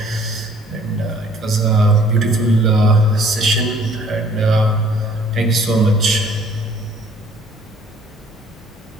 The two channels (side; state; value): both; normal; correlation 0.57